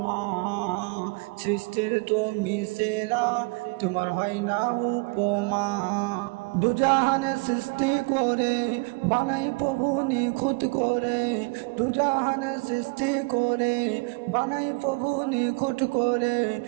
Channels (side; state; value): left; quieter; 29.7 dB